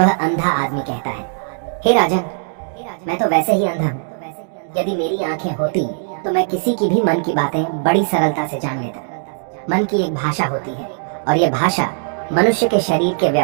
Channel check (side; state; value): left; silent; digital silence